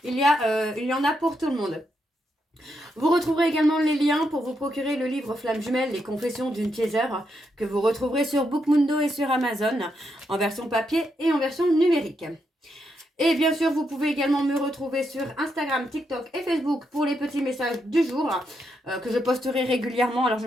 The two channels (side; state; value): both; normal; correlation 0.81